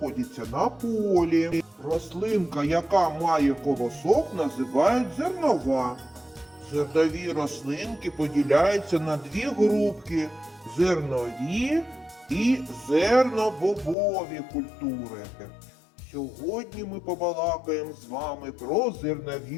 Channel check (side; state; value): right; drops out; at 14.0 s